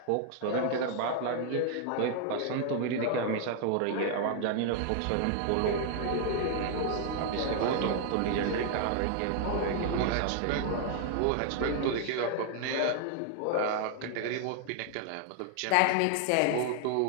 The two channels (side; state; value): both; different; correlation 0.00